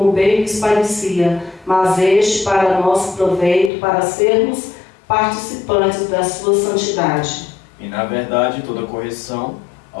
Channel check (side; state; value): right; drops out; at 3.7 s